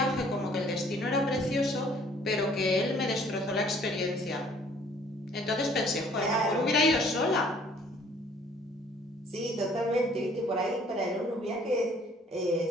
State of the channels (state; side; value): normal; both; correlation 0.58